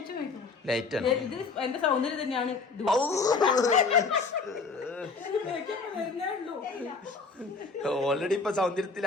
ലൈറ്റ് ആണ്. എന്റെ സൗന്ദര്യം തന്നെയാണ്. ഓൾറെഡി ഇപ്പൊ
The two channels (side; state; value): right; quieter; 4.3 dB